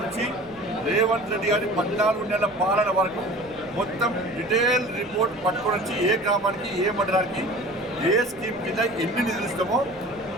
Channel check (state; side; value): noise; left; rumble, 23 dB below the sound